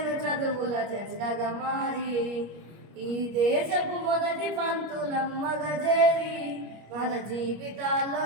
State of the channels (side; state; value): left; late; 25 ms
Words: చదువుల జెండగా మారి ఈ దేశపు మొదటి పంతులమ్మగా చేరి మన జీవితాల్లో